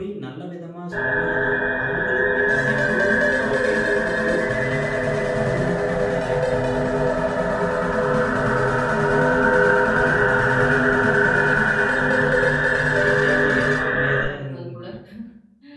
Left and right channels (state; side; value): identical; both; correlation 1.00